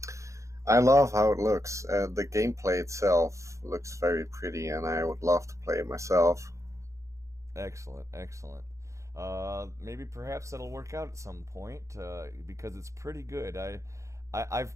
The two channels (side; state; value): left; late; 0.15 ms